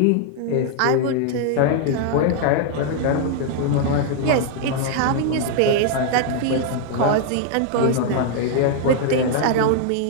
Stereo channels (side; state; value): both; different; correlation 0.00